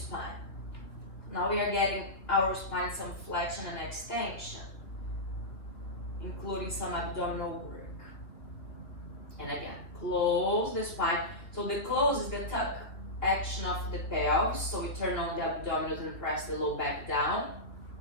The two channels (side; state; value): right; late; 2.5 ms